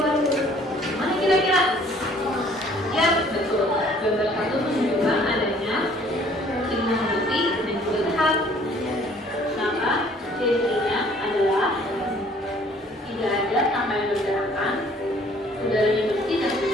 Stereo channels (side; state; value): both; normal; correlation 0.57